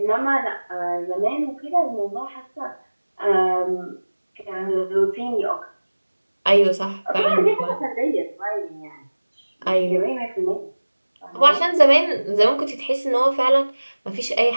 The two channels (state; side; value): inverted; both; correlation -1.00